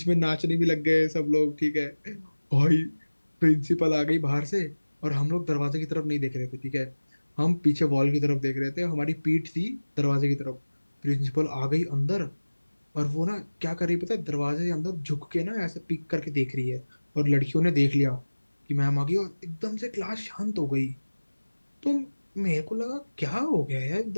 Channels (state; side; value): inverted; both; correlation -1.00